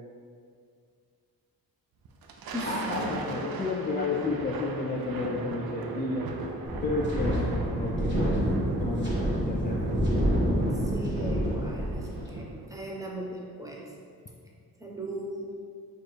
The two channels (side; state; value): both; normal; correlation 0.56